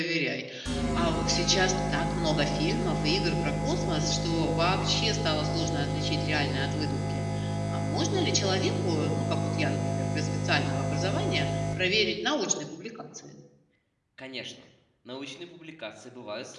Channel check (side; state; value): both; identical; correlation 1.00